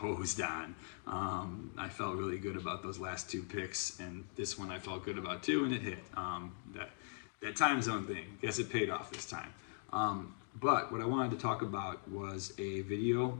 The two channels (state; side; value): silent; right; digital silence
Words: on. I felt really good about those last two picks, and this one I felt good about too, and it hit. That time zone thing, guess it paid off this time. But what I wanted to talk about was a video